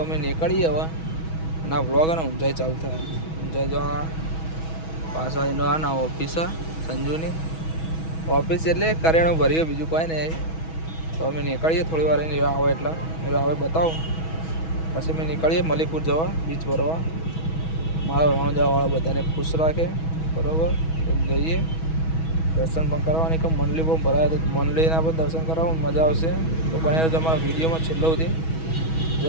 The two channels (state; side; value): late; right; 6.2 ms